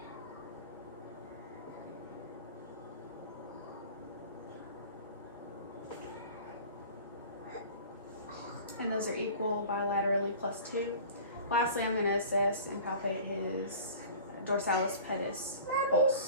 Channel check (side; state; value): both; inverted; correlation -0.42